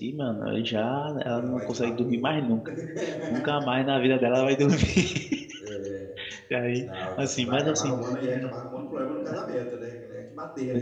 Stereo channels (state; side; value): identical; both; correlation 1.00